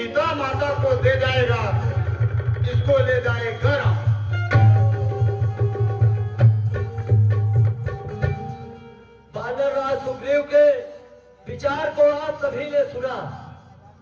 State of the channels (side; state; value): both; identical; correlation 1.00